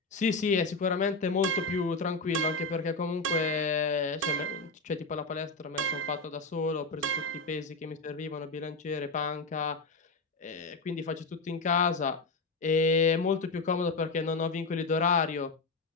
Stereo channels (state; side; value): quieter; right; 3.5 dB